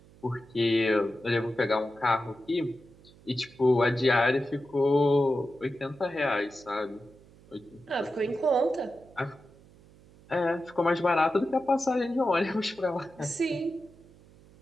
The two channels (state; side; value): noise; right; hum, 25 dB below the sound